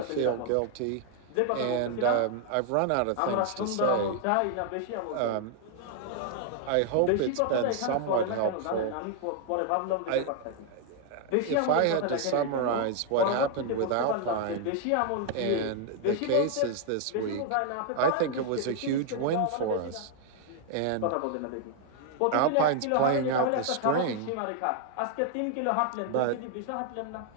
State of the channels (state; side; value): different; both; correlation 0.00